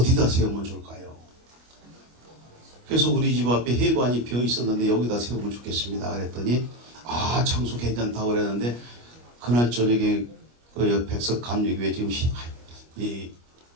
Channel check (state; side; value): late; left; 25 ms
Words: 세우면 좋을까요? 그래서 우리 집 앞에 회관이 비어 있었는데 여기다 세우면 좋겠습니다. 그랬더니 아 장소 괜찮다고 그랬는데 그날 저녁에 그 백석 감리교회 지금 이